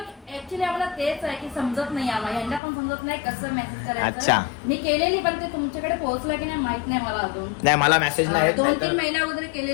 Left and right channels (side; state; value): right; drops out; at 2.6 s